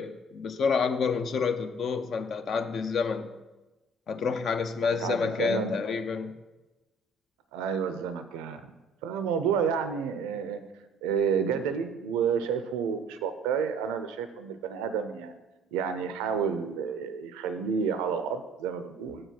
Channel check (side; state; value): both; normal; correlation 0.52